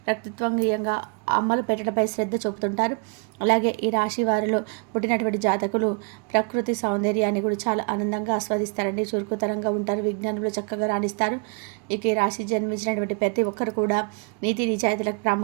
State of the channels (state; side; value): quieter; left; 34.5 dB